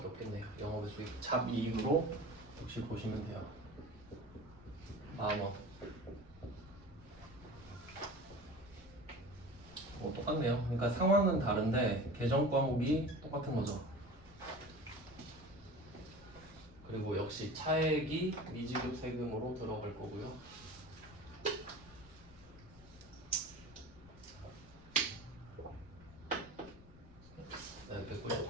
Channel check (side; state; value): left; noise; rumble, 21 dB below the sound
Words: 없겠네요. 영업의 수익 잡이익으로 역시 보시면 돼요. 10,000원. 똑같네요. 그러니까 상황은 다른데 계정 과목이 똑같은 거죠. 그리고 역시 차액이 미지급 세금으로 들어갈 거고요. 네,